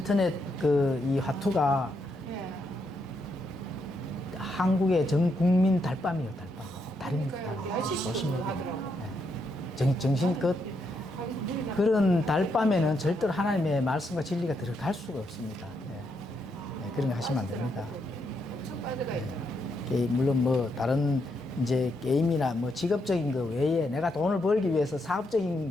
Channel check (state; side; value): normal; both; correlation 0.79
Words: 이 화투가 예. 한국의 전 국민 달밤이에요, 달밤. 달입니다, 달. 조심해야 돼요. 예. 정신 그런 달밤에는 절대로 하나님의 말씀과 진리가 들어갈 수가 없습니다. 예, 그런 거 하시면 안 됩니다. 엄청 빠져가 있잖아. 물론 뭐 다른 이제 게임이나 뭐 직업적인 거 외에 내가 돈을 벌기 위해서